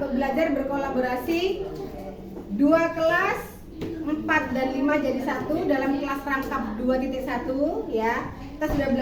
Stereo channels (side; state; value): both; identical; correlation 1.00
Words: belajar berkolaborasi 2 kelas 4 dan 5 jadi 1 dalam kelas rangkap 2.1 ya. Kita sudah